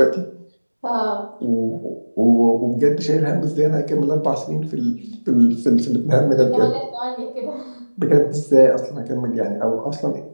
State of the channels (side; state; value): both; inverted; correlation -1.00